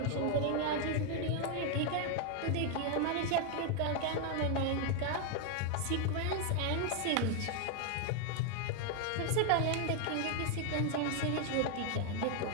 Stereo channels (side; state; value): both; different; correlation 0.00